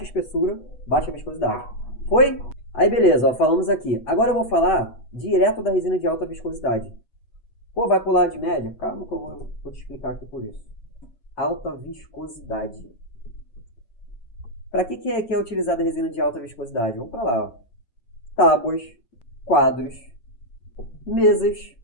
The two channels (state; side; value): late; right; 8.2 ms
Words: espessura, baixa viscosidade. Foi? Aí beleza, ó, falamos aqui. Agora eu vou falar direto da resina de alta viscosidade. Pô, vai pular de média? Calma que eu vou te explicar aqui por isso. Alta viscosidade. Para que é utilizada a resina de alta viscosidade? Vamos falar. Tábuas, quadros, mesas